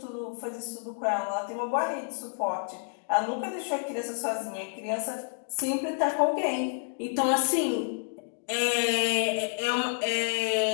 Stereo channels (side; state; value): right; silent; digital silence